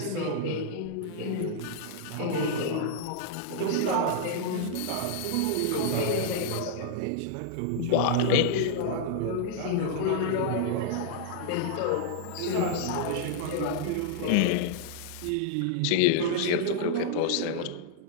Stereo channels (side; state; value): both; different; correlation -0.01